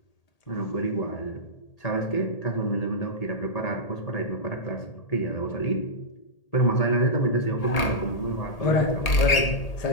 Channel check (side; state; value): right; late; 1.8 ms